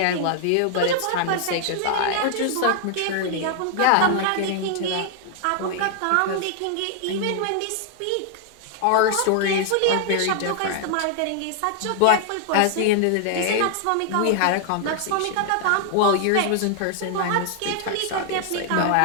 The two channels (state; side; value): different; both; correlation 0.00